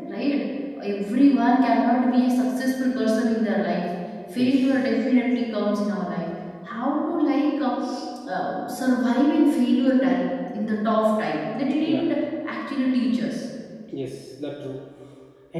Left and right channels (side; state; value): both; identical; correlation 1.00